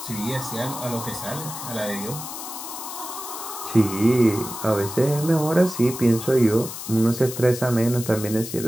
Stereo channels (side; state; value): left; noise; hiss, 9 dB below the sound